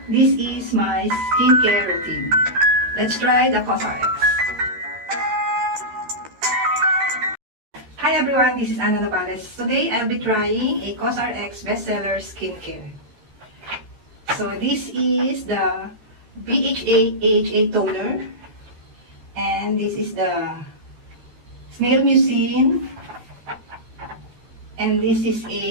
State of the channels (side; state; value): left; late; 13 ms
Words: this is my skincare routine. Let's try the COSRX. Hi everyone, this is Ana Nopales. Today I'll be trying a COSRX bestseller skincare. So this is the BHA AHA toner and this is the snail mucin and this is